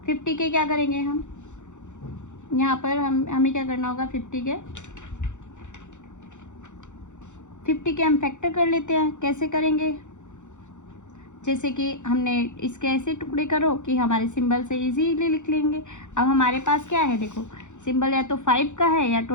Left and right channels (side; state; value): right; late; 0.85 ms